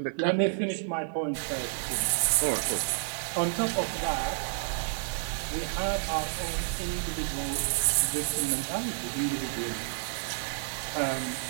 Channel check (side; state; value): left; silent; digital silence